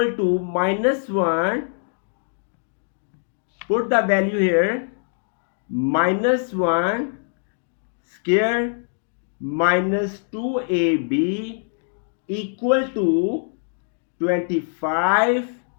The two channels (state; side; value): silent; right; digital silence